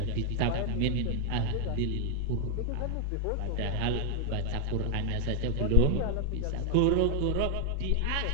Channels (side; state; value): both; different; correlation 0.00